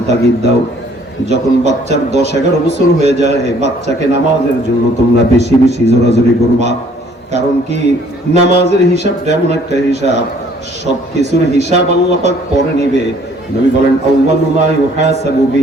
তাগিদ দাও। যখন বাচ্চার 10-11 বছর হয়ে যায়, বাচ্চাকে নামাজের জন্য তোমরা বেশি বেশি জোরাজোরি করবা। কারণ কি, নামাজের হিসাবটা এমন একটা হিসাব, সবকিছুর হিসাব আল্লাহ পাক পরে নিবে। নবী বলেন, আউয়ালু মা ইউহাসাবু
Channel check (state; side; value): normal; both; correlation 0.60